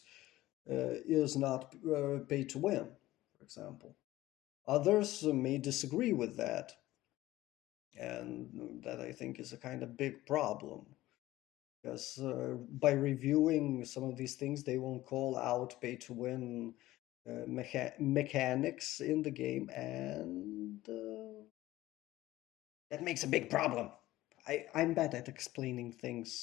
is not pay to win, for example. Others may disagree with that, and that I think is a kind of big problem because by reviewing some of these things, they won't call out pay to win mechanics in the game, and that makes a big problem. I'm bad at explaining things,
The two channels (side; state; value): right; quieter; 16.5 dB